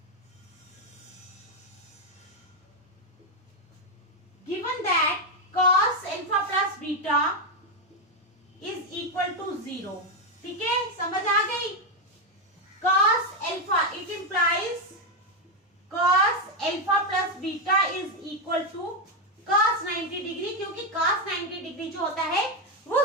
Given that cos alpha plus beta is equal to 0, ठीक है, समझ आ गई? cos alpha, it implies cos alpha plus beta is equal to cos 90 degree, क्योंकि cos 90 डिग्री जो होता है वो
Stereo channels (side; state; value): both; normal; correlation 0.05